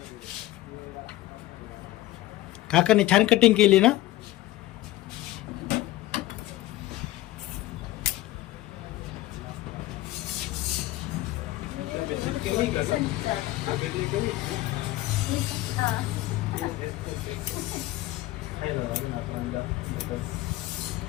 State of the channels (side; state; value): right; quieter; 16.8 dB